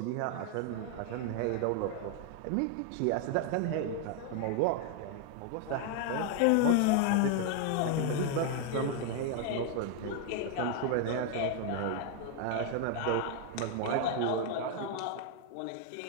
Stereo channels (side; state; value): both; different; correlation 0.00